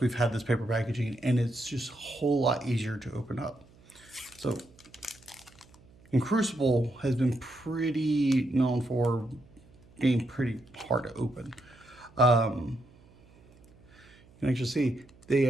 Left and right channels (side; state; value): right; noise; hum, 26 dB below the sound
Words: we've had this paper packaging, and it's just a whole lot easier to open up. So, and Crucible has been pretty known for being pretty hard to open. You can actually see they